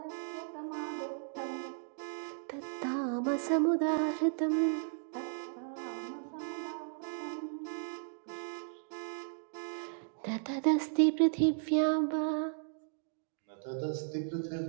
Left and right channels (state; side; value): silent; left; digital silence